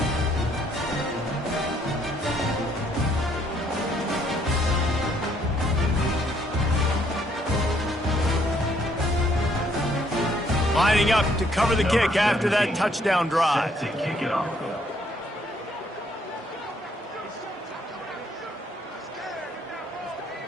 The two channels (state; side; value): normal; both; correlation 0.68